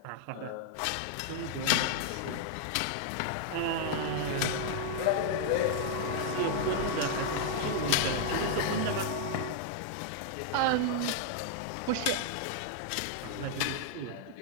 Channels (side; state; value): both; different; correlation -0.01